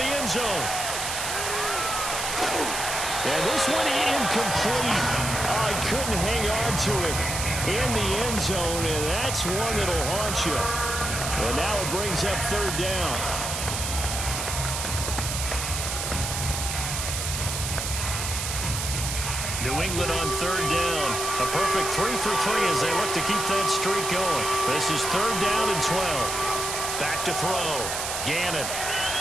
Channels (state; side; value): noise; right; hiss, 3 dB below the sound